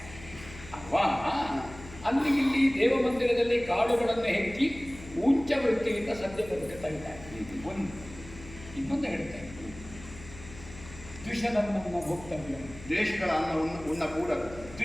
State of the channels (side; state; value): left; noise; hum, 17 dB below the sound